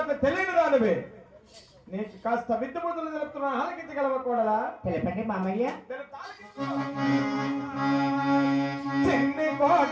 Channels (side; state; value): both; identical; correlation 1.00